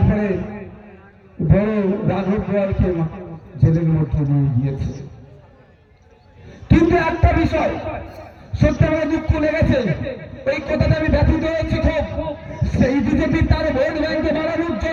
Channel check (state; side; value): identical; both; correlation 1.00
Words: বড় রাঘব গোয়ালকে জেলের মধ্যে নিয়ে গিয়েছে। কিন্তু একটা বিষয় সত্যি আমার দুঃখ লেগেছে, এই কথাটা আমি ব্যথিত হয়েছি খুব। সেই বিজেপি তার ভোট ব্যাংকে বাড়ানোর